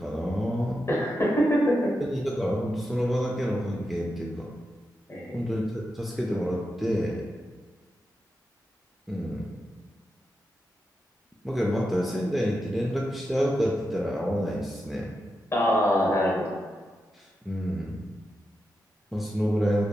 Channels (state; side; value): normal; both; correlation 0.88